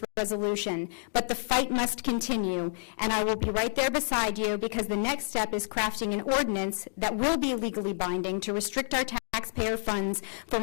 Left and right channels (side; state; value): right; silent; digital silence